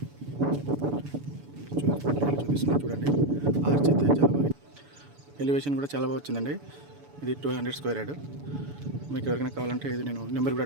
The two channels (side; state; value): left; late; 7.0 ms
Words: చూపిస్తున్నాం చూడండి. ఆర్చ్ అయితే చాలా బాగా, ఎలివేషన్ కూడా చాలా బాగా వచ్చిందండి. ఇది 200 స్క్వేర్ యార్డ్. మీకు ఎవరికైనా కావాలంటే ఇది నేను నెంబర్ కూడా